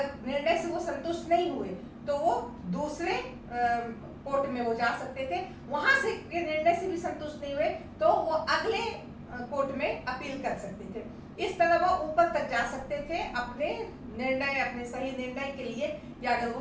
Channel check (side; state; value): both; identical; correlation 1.00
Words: निर्णय से वो संतुष्ट नहीं हुए तो वो दूसरे कोर्ट में वो जा सकते थे, वहां से निर्णय से भी संतुष्ट नहीं हुए तो वो अगले कोर्ट में अपील कर सकते थे। इस तरह वो ऊपर तक जा सकते थे अपने निर्णय, अपने सही निर्णय के लिए, या अगर